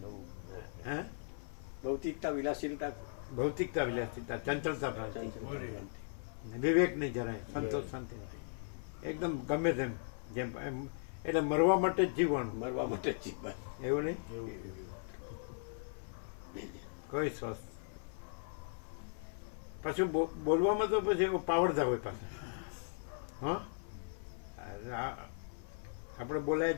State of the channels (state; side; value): silent; right; 52 dB below the other